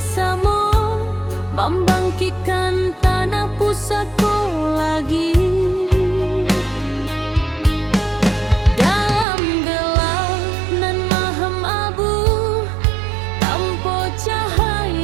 membangkitkan tanah pusatku lagi. Dalam gelap nan mahem abu, tanpa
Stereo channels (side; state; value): left; drops out; at 9.2 s